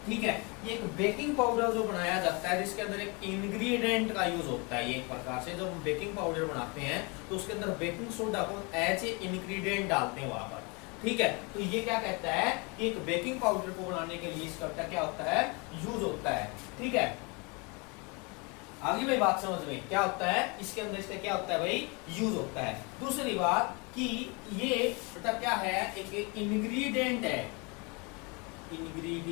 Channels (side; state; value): right; quieter; 30.0 dB